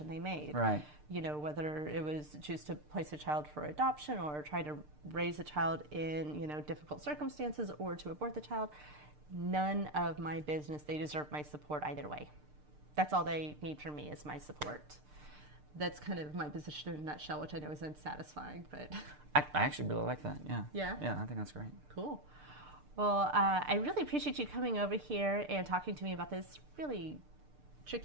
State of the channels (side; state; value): left; late; 6.7 ms